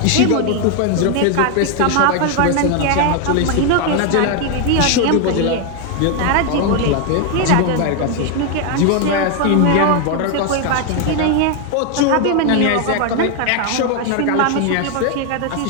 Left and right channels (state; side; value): different; both; correlation 0.01